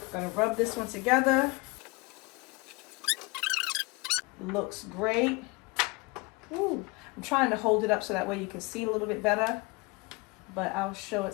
Gonna rub this one together. Looks great. Ooh, I'm trying to hold it up so that way you can see a little bit better, but I'll show it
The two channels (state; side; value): quieter; right; 25.7 dB